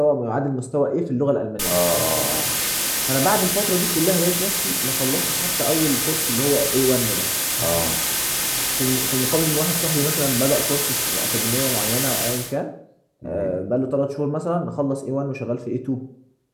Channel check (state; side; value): identical; both; correlation 1.00